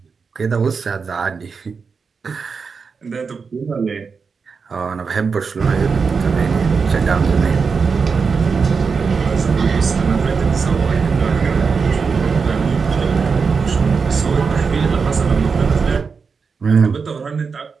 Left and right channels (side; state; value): left; quieter; 5.3 dB